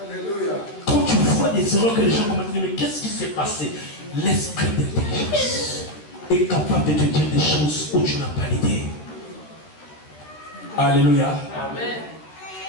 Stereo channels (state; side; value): late; right; 13 ms